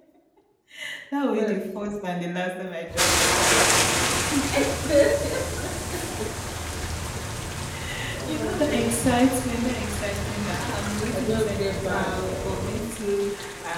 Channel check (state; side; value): identical; both; correlation 1.00